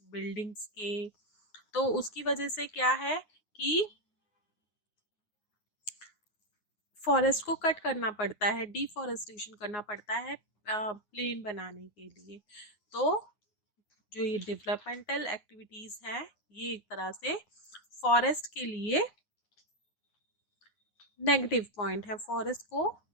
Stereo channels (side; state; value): right; late; 9.6 ms